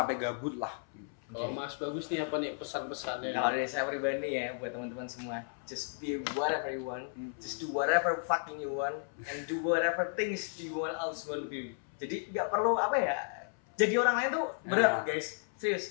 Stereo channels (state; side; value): silent; right; 55 dB below the other